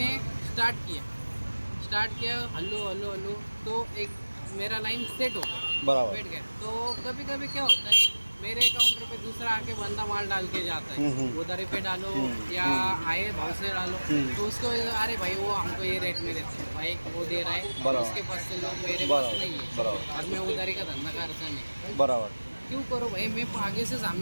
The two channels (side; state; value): both; inverted; correlation -1.00